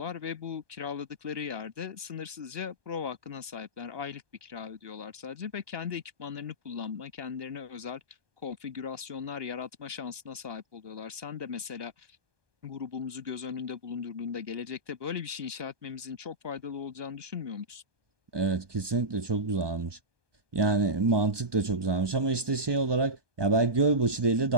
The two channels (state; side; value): late; left; 1.2 ms